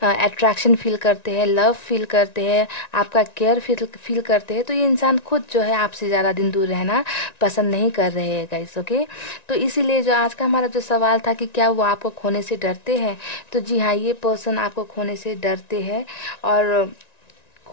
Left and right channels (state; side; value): late; right; 1.9 ms